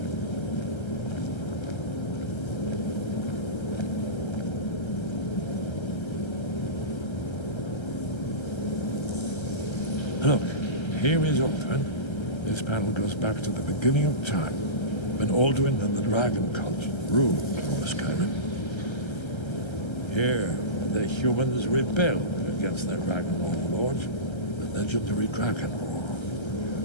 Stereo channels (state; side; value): late; right; 1.3 ms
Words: Look, here is Alduin. This panel goes back to the beginning of time, when Alduin and the dragon cult ruled over Skyrim. Here, the humans rebelled against their dragon overlords, the legendary Dragon War.